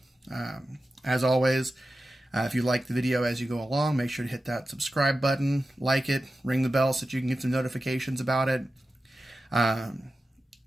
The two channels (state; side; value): normal; both; correlation 0.93